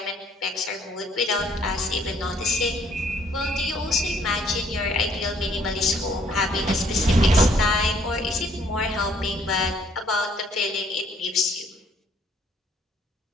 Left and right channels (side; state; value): both; normal; correlation 0.63